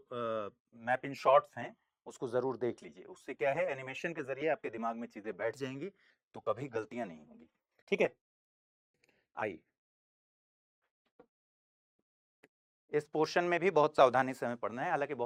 मैप इन शॉर्ट्स हैं उसको जरूर देख लीजिए। उससे क्या है, एनिमेशन के जरिए आपके दिमाग में चीजें बैठ जाएंगी तो कभी गलतियां नहीं होंगी। ठीक है, आइए, इस पोर्शन में भी बहुत सावधानी से हमें पढ़ना है। हालांकि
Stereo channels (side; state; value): both; identical; correlation 1.00